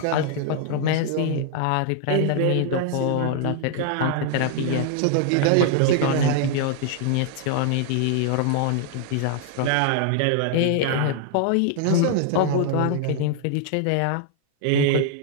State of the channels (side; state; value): both; different; correlation 0.00